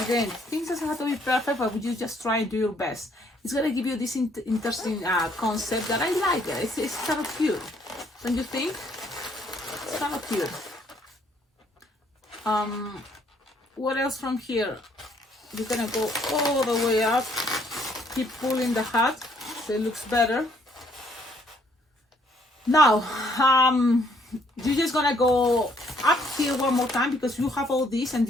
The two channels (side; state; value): both; normal; correlation 0.66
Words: again, things doesn't have to be perfect, but you just try and do your best. It's gonna give you this interesting concept that I like it. It's kind of cute. Don't you think? It's kind of cute. What else from here? You're gonna go all the way up, keep pulling the hat so it looks better. Now you're just gonna go up here one more time because you have all this, and